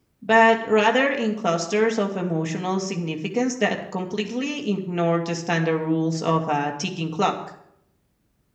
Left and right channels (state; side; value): identical; both; correlation 1.00